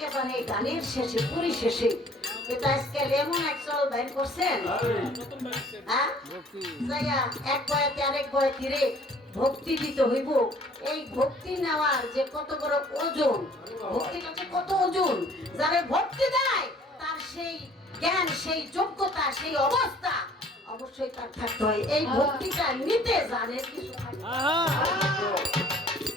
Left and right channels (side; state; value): both; normal; correlation 0.55